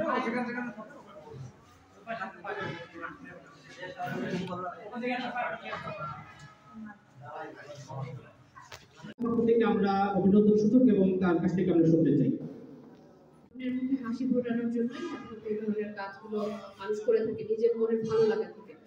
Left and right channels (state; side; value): identical; both; correlation 1.00